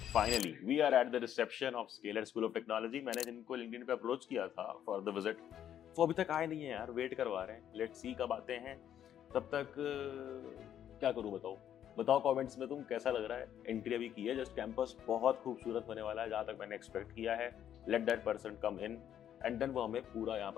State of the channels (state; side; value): quieter; right; 10.2 dB